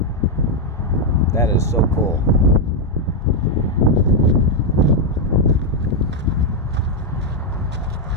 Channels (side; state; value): both; normal; correlation 0.01